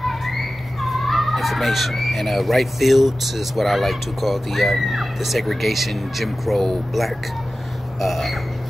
information, and right fields is what I like to call the segregation, Jim Crow, black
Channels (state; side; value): normal; both; correlation 0.95